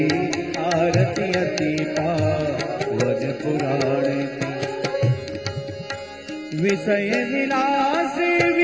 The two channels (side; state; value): both; identical; correlation 1.00